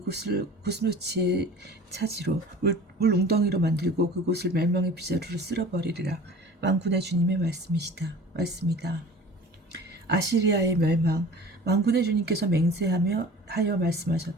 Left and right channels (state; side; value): normal; both; correlation 0.42